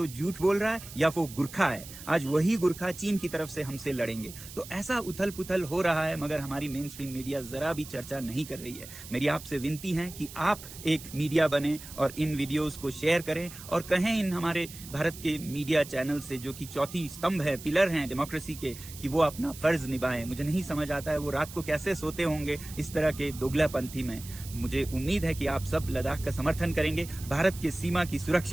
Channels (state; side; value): noise; right; hiss, 14 dB below the sound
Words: झूठ बोल रहा है या वो गुरखा है। आज वही गुरखा चीन की तरफ से हमसे लड़ेंगे। तो ऐसा उथल पुथल हो रहा है, मगर हमारी मेन स्ट्रीम मीडिया जरा भी चर्चा नहीं कर रही है। मेरी आपसे विनती है कि आप एक मीडिया बने और इन वीडियोस को शेयर करें और कहें इन हमारे भारत के मीडिया चैनल से, जो कि चौथी स्तंभ है, पिलर हैं डेमोक्रेसी के, कि वो अपना फर्ज निभाएं। मुझे नहीं समझ आता है वो रात को कैसे सोते होंगे इस तरह के दोगलापंथी में। मुझे उम्मीद है कि आप सब लद्दाख का समर्थन करेंगे, भारत के सीमा की